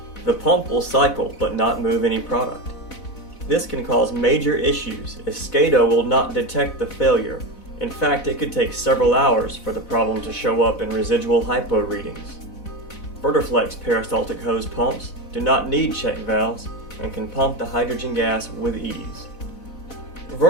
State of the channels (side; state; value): right; late; 4.0 ms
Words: The pump will cycle but not move any product. This can cause major issues as SCADA will not detect the failure. In fact, it could take several hours for the problem to show up in residual hypo readings. VerderFlex peristaltic hose pumps do not need check valves and can pump the hydrogen gas with ease.